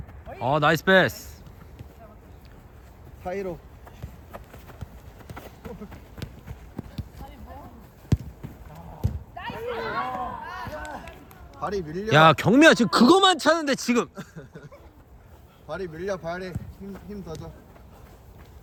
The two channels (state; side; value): identical; both; correlation 1.00